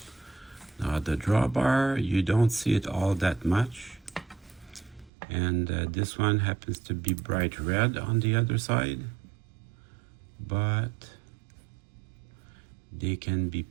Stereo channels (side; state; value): left; drops out; at 5.1 s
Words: Now the drawbar, you don't see it all that much. And this one happens to be bright red on the other side. But they can be